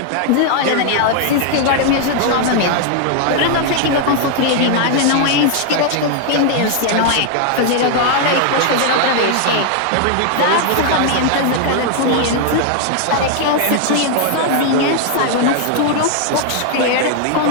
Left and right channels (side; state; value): both; different; correlation 0.00